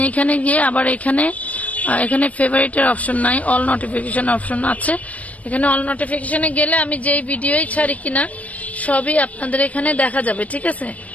এখানে গিয়ে আবার এখানে ফেভারিটের অপশন নাই, অল নোটিফিকেশন অপশন আছে। এখানে অল নোটিফিকেশনে গেলে আমি যেই ভিডিওই ছাড়ি কিনা সবই আপনাদের এখানে দেখা যাবে, ঠিক আছে?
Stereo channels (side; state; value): right; late; 0.068 ms